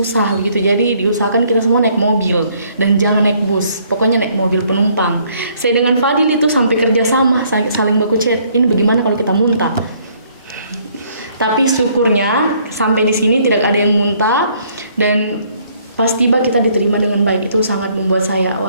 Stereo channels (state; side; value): inverted; both; correlation -0.64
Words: begitu. Jadi diusahakan kita semua naik mobil dan jangan naik bus, pokoknya naik mobil penumpang. Saya dengan Fadil itu sampai kerjasama, saling baku chat. Ini bagaimana kalau kita muntah? Tapi syukurnya sampai di sini tidak ada yang muntah dan pas tiba kita diterima dengan baik. Itu sangat membuat saya